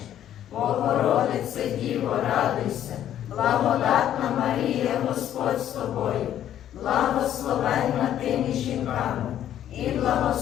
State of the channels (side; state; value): right; quieter; 11.1 dB